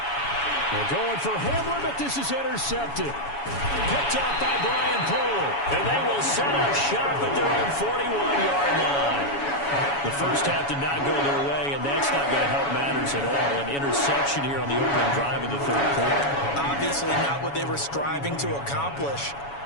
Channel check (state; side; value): late; right; 7.1 ms